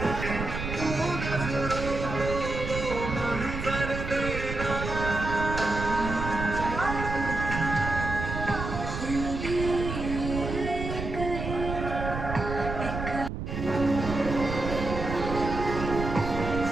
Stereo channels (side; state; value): right; noise; rumble, 5 dB below the sound